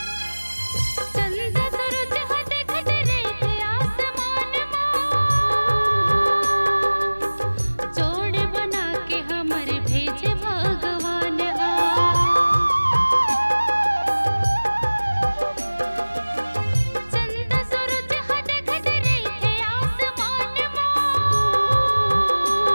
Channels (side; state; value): both; inverted; correlation -1.00